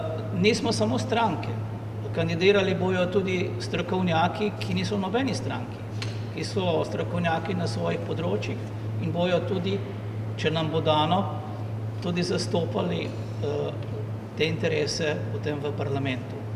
Nismo samo stranke, kandidirali bojo tudi strokovnjaki, ki niso v nobeni stranki, ki so strokovnjaki na svojih področjih in bojo tudi, če nam bo dano, tudi zastopali te interese potem v parlamentu.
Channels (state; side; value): identical; both; correlation 1.00